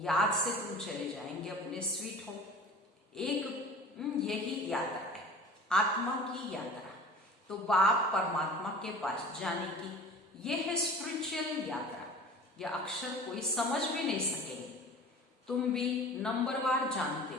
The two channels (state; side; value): normal; both; correlation 0.41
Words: से तुम चले जाएंगे अपने स्वीट होम। एक यही यात्रा है, आत्मा की यात्रा। तो बाप परमात्मा के पास जाने की ये है स्पिरिचुअल यात्रा। यह अक्षर कोई समझ भी नहीं सकेंगे। तुम भी नंबरवार जानते